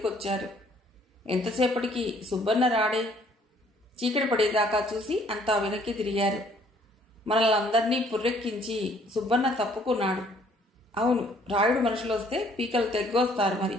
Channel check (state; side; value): normal; both; correlation 0.61